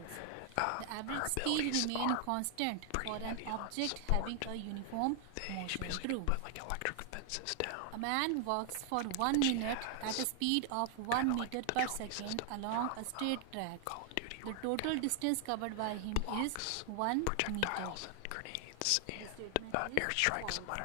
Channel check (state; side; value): different; both; correlation 0.00